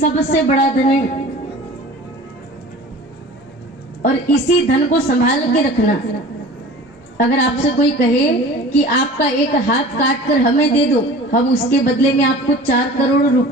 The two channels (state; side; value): normal; both; correlation 0.41